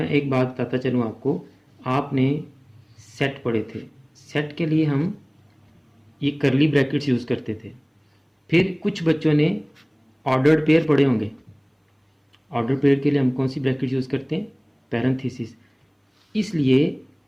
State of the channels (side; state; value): both; identical; correlation 1.00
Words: एक बात बताता चलूँ आपको। आपने सेट पढ़े थे, सेट के लिए हम ये करली ब्रैकेट्स यूज़ करते थे। फिर कुछ बच्चों ने ऑर्डर्ड पेयर पढ़े होंगे। ऑर्डर पेयर के लिए हम कौन सी ब्रैकेट यूज़ करते हैं? पैरेंथेसिस। इसलिए